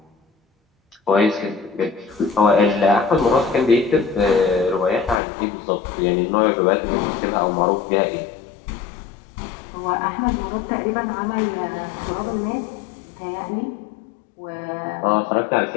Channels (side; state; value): right; drops out; at 5.2 s